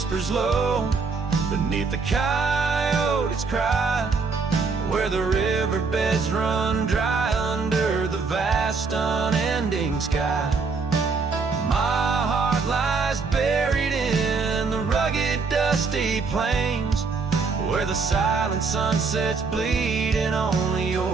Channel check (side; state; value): left; quieter; 4.7 dB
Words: low beneath the coyote's cry, where the riverbeds run dry under the vast unending sky. My heart lies buried in the rugged dusty plains, where the silent sunsets bleed and only